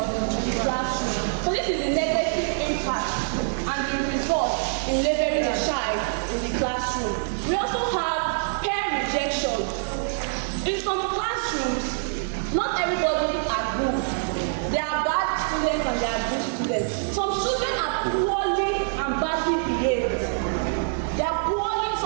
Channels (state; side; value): silent; left; digital silence